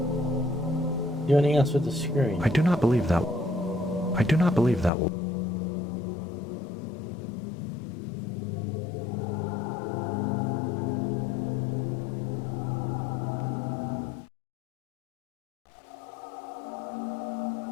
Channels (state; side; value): drops out; right; at 4.9 s